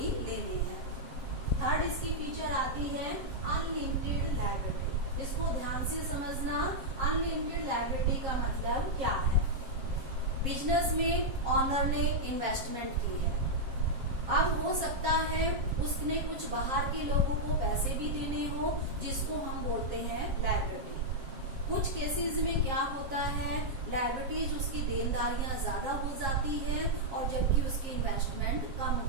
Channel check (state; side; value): late; left; 7.4 ms